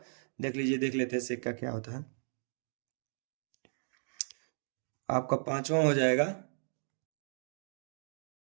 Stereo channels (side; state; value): left; silent; digital silence